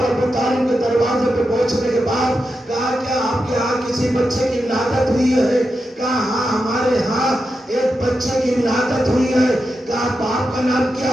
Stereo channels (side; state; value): both; normal; correlation 0.88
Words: ابو طالب کے دروازے پہ پہنچنے کے بعد کہا کیا آپ کے ہاں کسی بچے کی ولادت ہوئی ہے؟ کہا ہاں ہمارے ہاں ایک بچے کی ولادت ہوئی ہے۔ کہا باپ کا نام